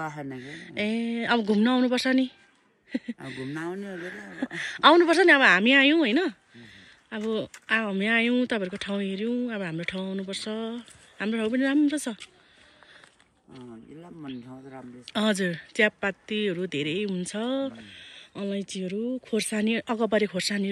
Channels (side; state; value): both; identical; correlation 1.00